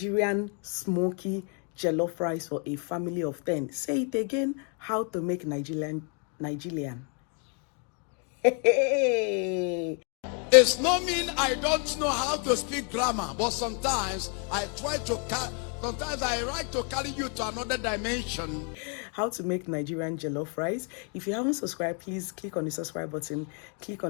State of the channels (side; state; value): right; quieter; 39.7 dB